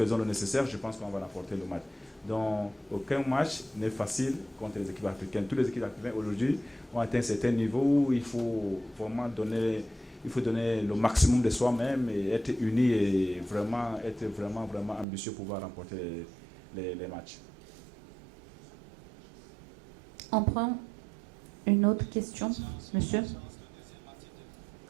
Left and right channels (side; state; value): left; drops out; at 15.1 s